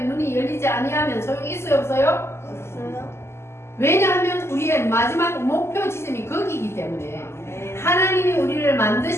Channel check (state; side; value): late; right; 0.12 ms